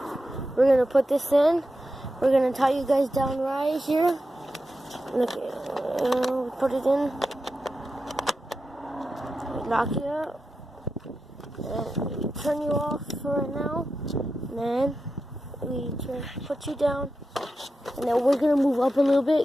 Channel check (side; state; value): both; normal; correlation 0.90